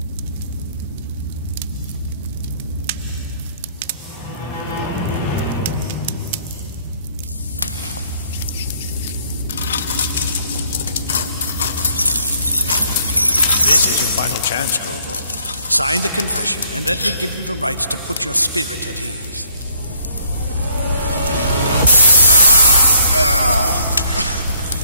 This is your final chance, Corvo. Sign the confession, and let me give you the rights to put your spirit at ease.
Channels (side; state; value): both; inverted; correlation -0.64